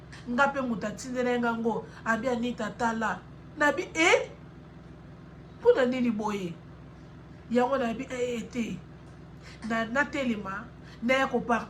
Nga pe mutu atindela ngango abi Anita tala nabi mpona nini boye yango nabi te na telema na ya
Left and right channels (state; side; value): identical; both; correlation 1.00